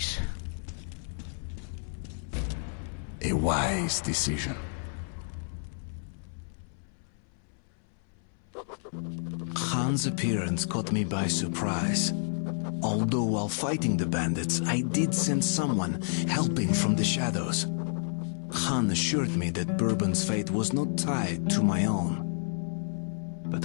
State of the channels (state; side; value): silent; right; 58 dB below the other